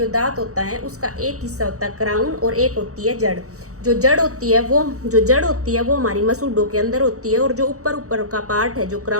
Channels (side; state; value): left; late; 0.65 ms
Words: दांत होता है उसका एक हिस्सा होता है क्राउन और एक होती है जड़। जो जड़ होती है वो हमारी मसूड़ों के अंदर होती है और जो ऊपर ऊपर का पार्ट है, जो